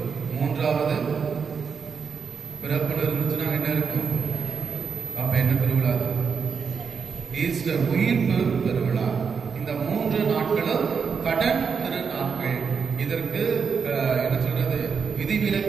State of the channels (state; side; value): quieter; left; 6.0 dB